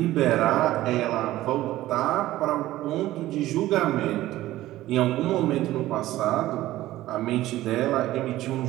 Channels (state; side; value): quieter; left; 15.6 dB